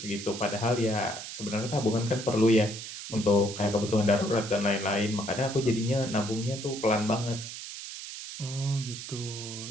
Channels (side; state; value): right; noise; hiss, 9 dB below the sound